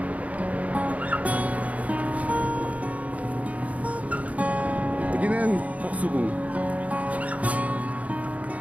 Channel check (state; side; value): late; left; 0.069 ms